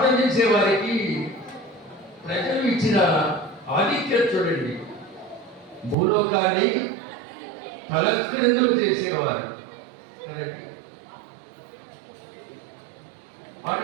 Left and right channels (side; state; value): left; drops out; at 6.0 s